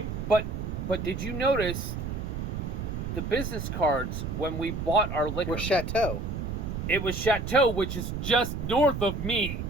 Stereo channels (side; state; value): right; noise; rumble, 4 dB below the sound